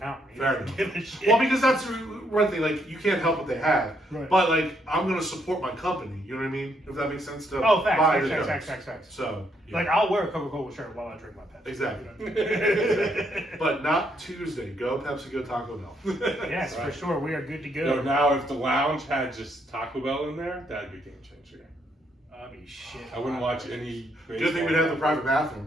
Fair enough. Well, because that's one thing. Like you can't help what they have, right. But like I'm gonna support my company. You know what I mean? If that makes sense to facts. So yeah. Like I'll wear a Coca-Cola shirt while I drink my Pepsi. Exactly. But not Tuesday. Go Pepsi. Go Taco Bell. Yes, right. For sure. We are good to go. So now, if the lounge had just Taco Bell in there, that'd be a game changer. I mean, shit. I wouldn't watch any. Good thing we'd have the private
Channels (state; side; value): normal; both; correlation 0.74